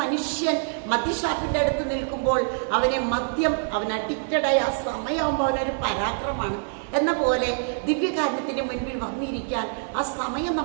മനുഷ്യൻ മദ്യഷാപ്പിൻ്റെ അടുത്ത് നിൽക്കുമ്പോൾ അവൻ അഡിക്റ്റഡായി. ആ സമയമാകുമ്പോൾ അവനൊരു പരാക്രമമാണ് എന്ന പോലെ ദിവ്യകാരുണ്യത്തിൻ്റെ മുൻപിൽ വന്നിരിക്കാൻ ആ സമയം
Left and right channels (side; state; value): left; silent; 61 dB below the other